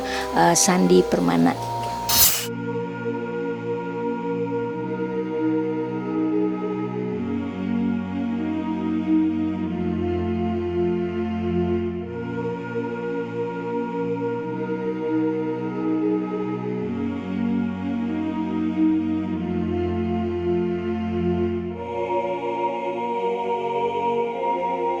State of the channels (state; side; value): identical; both; correlation 1.00